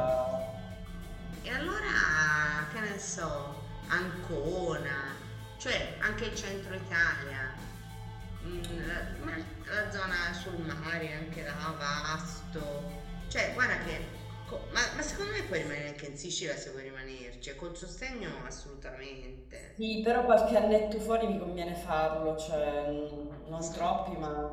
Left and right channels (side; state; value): both; identical; correlation 1.00